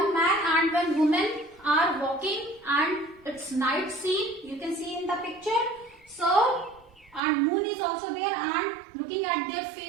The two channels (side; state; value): left; drops out; at 7.2 s